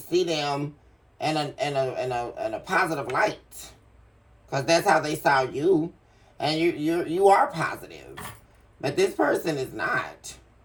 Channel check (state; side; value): identical; both; correlation 1.00